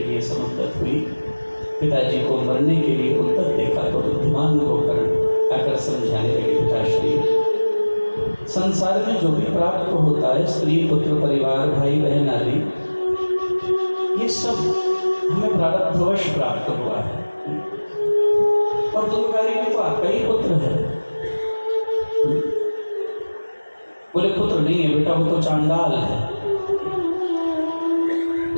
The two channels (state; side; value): inverted; both; correlation -1.00